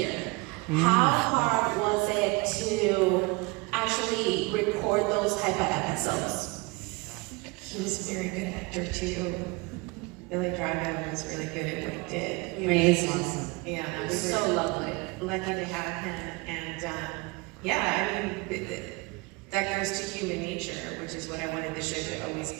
How hard was it to actually record those type of episodes? He was a very good actor too. Billy Drago was really good at what he did. He was awesome. Yeah, He we was were so lovely. Lucky to have him, and that goes to human nature, which is what I wanted the show to always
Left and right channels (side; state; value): left; quieter; 26.1 dB